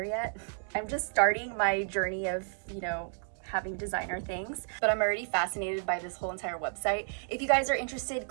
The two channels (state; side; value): silent; left; 57 dB below the other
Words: yet. I'm just starting my journey of, you know, having designer things, but I'm already fascinated by this whole entire website. If you guys are interested,